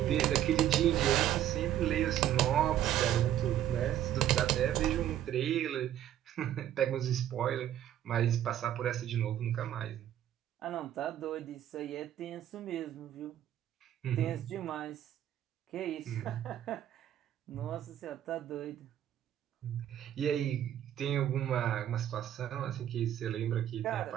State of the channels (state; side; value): quieter; left; 11.5 dB